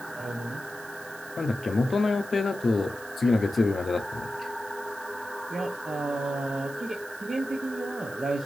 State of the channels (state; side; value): noise; right; hiss, 18 dB below the sound